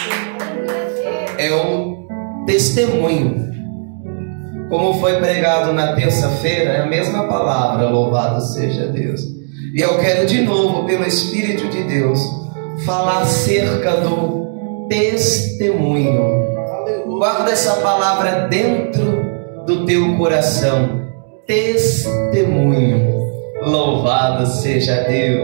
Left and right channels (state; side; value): silent; left; digital silence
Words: É um testemunho. Como foi pregado na terça-feira, é a mesma palavra, louvado seja Deus. E eu quero de novo, pelo Espírito de Deus, falar acerca do testemunho. Guarda essa palavra dentro do teu coração. Testemunho. Louvado seja